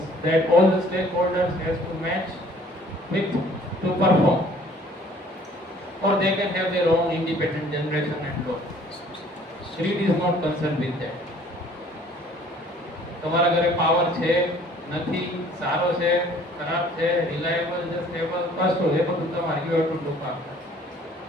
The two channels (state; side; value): normal; both; correlation 0.55